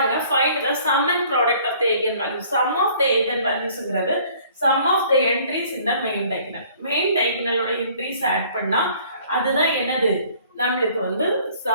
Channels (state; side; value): inverted; both; correlation -0.56